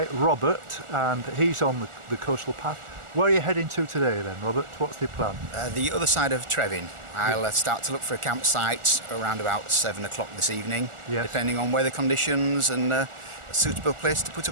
Robert, and he's on the coastal path. Where are you heading to today then, Robert? What's the plan? The other side of Trevin. I'll start to look for a campsite around about 7 o'clock this evening, depending on weather conditions and a suitable place to put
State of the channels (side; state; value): left; late; 1.4 ms